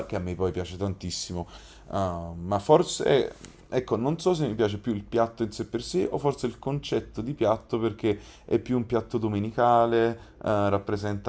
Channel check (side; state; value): both; identical; correlation 1.00